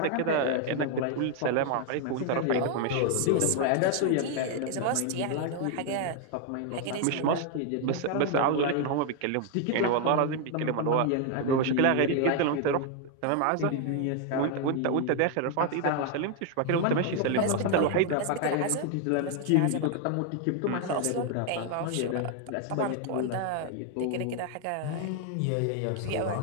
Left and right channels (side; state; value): both; different; correlation 0.00